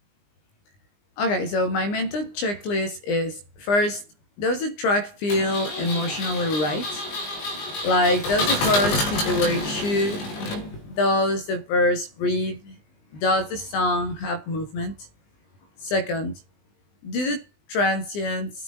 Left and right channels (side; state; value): right; late; 20 ms